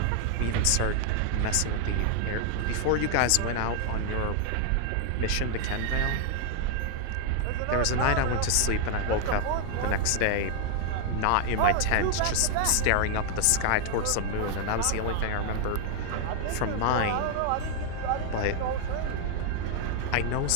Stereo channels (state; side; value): different; both; correlation 0.00